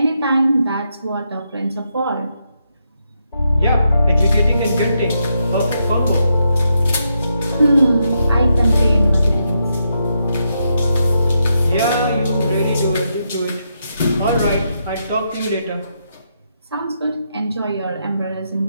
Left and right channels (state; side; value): inverted; both; correlation -0.81